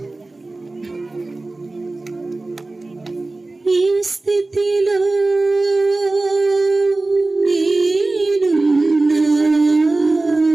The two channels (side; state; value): left; quieter; 3.1 dB